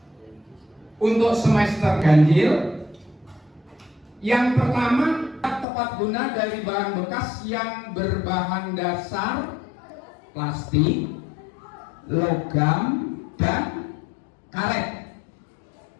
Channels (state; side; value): drops out; right; at 5.7 s